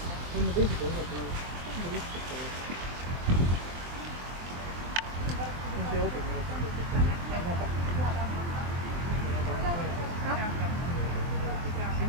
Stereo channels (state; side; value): late; left; 23 ms